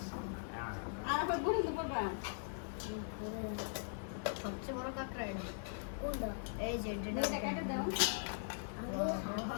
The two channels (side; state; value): right; silent; 51 dB below the other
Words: সবচেয়ে বড় কাঁকড়া এটা। কোনটা? এই যে এটা কেটে দাও।